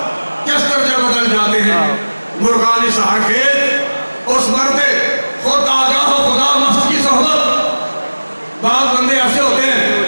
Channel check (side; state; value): both; inverted; correlation -1.00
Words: کس درجہ بدل جاتے ہیں مرغان سحر خیز، اس مرد خود آگاہ و خدا مست کی صحبت۔ بعض بندے ایسے ہوتے